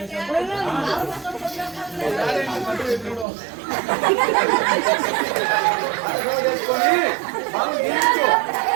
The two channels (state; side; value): drops out; left; at 3.2 s